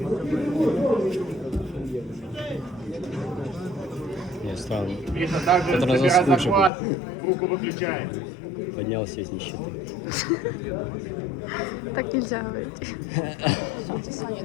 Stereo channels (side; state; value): right; drops out; at 6.7 s